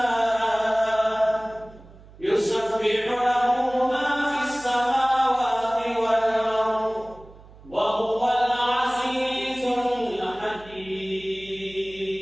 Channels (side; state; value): right; noise; hum, 22 dB below the sound